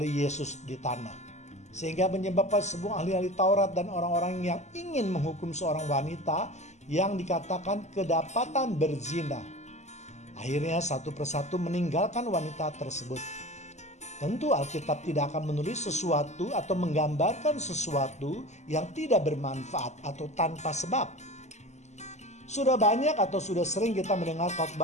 Yesus di tanah, sehingga menyebabkan sebuah ahli-ahli Taurat dan orang-orang yang ingin menghukum seorang wanita yang dikatakan kedapatan berzina, akhirnya satu persatu meninggalkan wanita tersebut. Tentu Alkitab tidak akan menulis sesuatu atau menggambarkan sesuatu yang tidak bermanfaat atau tanpa sebab. Sudah banyak atau sudah sering kita mendengar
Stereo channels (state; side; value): late; right; 0.33 ms